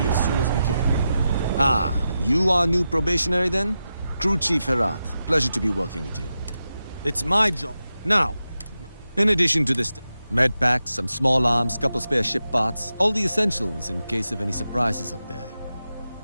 as soon as we can. Ah, you are new probationary then? Crew Chief Herath. Pleasure to be working with you. It's my job. Now, in addition to this, med packs, some small arms, couple spare ship parts, all the essentials in case of any surprises up there.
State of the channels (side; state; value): both; inverted; correlation -0.90